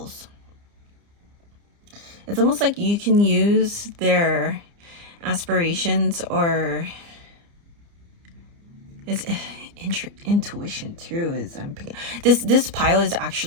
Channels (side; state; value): left; late; 29 ms